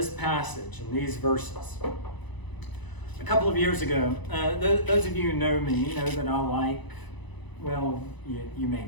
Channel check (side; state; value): right; late; 1.0 ms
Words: passage and these verses, a couple of years ago, those of you who know me know that I like, well, you may